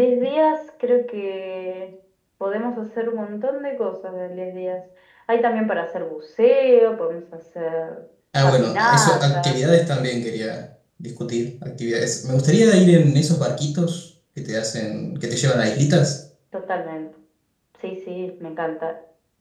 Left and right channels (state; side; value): identical; both; correlation 1.00